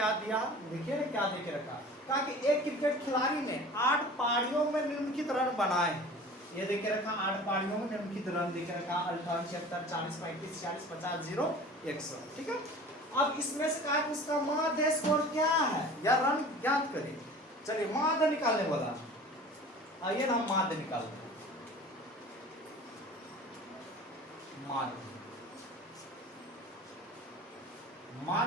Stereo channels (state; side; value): normal; both; correlation 0.42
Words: दिया, देखिए ना क्या देके रखा। कहा कि एक क्रिकेट खिलाड़ी ने 8 पारियों में निम्नलिखित रन बनाए। ये देके रखा 8 पारियों में निम्नलिखित रन देके रखा 58 76 40 35 46 50 0 100, ठीक है। अब इसमें से कहा कि उसका माध्य स्कोर क्या है या रन ज्ञात करें। चलिए माध्य निकालने वाला, आइए ना हम माध्य निकालते हैं।